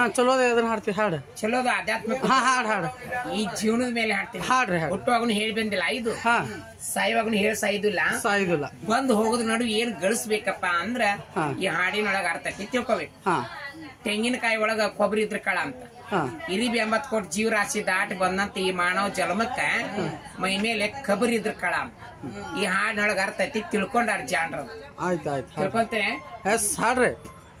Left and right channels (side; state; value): both; identical; correlation 1.00